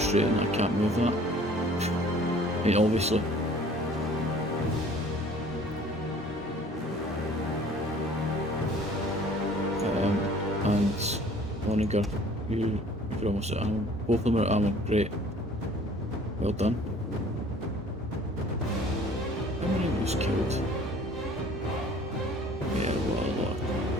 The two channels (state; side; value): normal; both; correlation 0.52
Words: I can't move that. I mean, obviously. And Onager, you're almost at ammo. Both of them are at ammo, great. Well done. How many was killed? Yeah, what a lot.